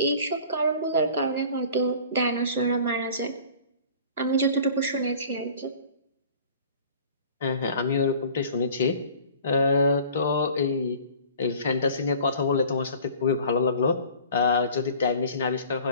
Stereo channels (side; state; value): both; inverted; correlation -0.47